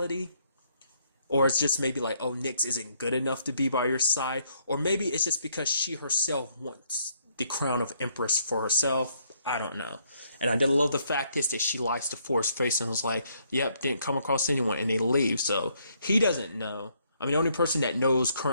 Or it's just maybe like, oh, Nyx isn't good enough to be by your side. Or maybe it's just because she herself wants the crown of Empress for herself. I don't know. And I did love the fact is that she likes to force face and was like, yep, didn't come across anyone, and they leave. So he doesn't know. I mean, the only person that knows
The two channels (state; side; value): inverted; both; correlation -0.70